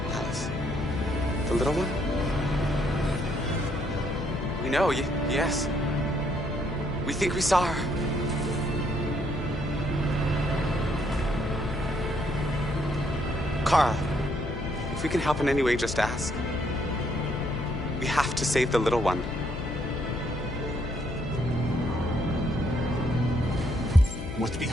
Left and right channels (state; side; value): noise; left; hum, 8 dB below the sound